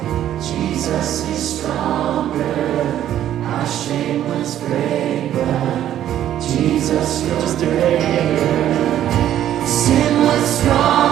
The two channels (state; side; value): quieter; left; 11.5 dB